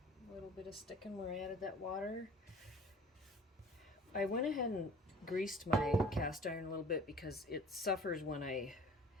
A little bit of sticking where I added that water. I went ahead and greased my cast iron a little bit because it suffers when I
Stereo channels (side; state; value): both; normal; correlation 0.47